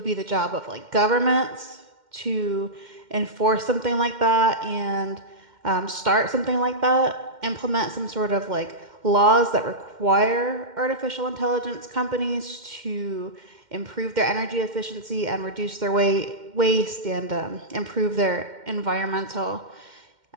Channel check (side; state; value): left; late; 2.1 ms